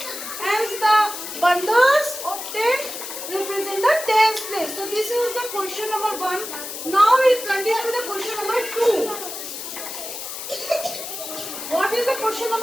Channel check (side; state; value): left; noise; hiss, 8 dB below the sound